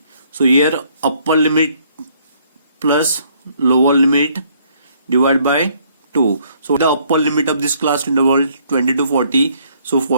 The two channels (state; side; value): inverted; both; correlation -0.65